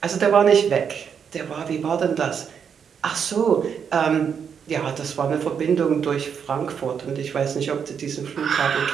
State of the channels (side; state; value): left; quieter; 7.2 dB